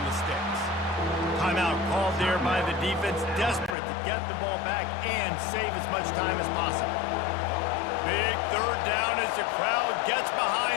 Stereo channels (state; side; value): drops out; right; at 3.8 s